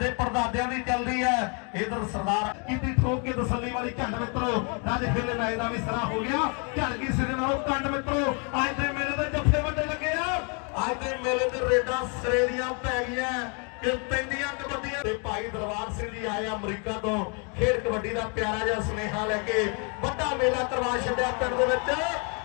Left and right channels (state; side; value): quieter; right; 36.5 dB